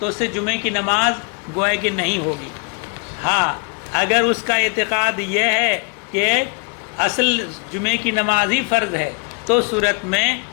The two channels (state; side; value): quieter; right; 33.3 dB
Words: اس سے جمعے کی نماز گویا کہ نہیں ہوگی. ہاں، اگر اس کا اعتقاد یہ ہے کہ اصل جمعے کی نماز ہی فرض ہے، تو صورت میں